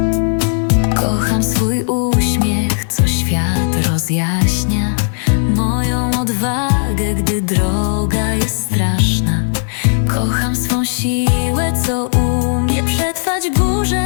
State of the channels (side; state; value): right; silent; digital silence